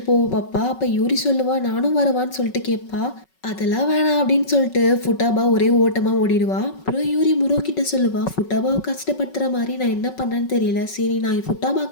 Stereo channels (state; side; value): late; right; 5.4 ms